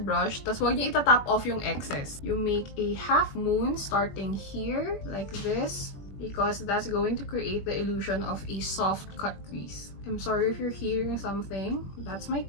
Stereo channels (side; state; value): right; late; 21 ms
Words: tas huwag niyo itatap off yung excess. You make a half moon starting here, like this, because that's going to create the illusion of a soft cut crease. I'm sorry if you're hearing something. That's my